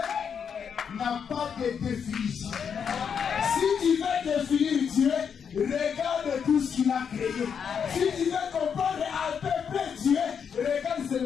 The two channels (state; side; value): quieter; right; 7.1 dB